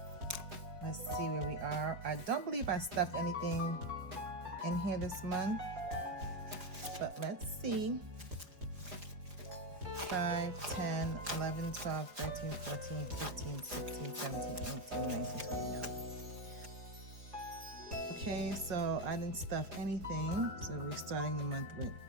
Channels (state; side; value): late; left; 4.9 ms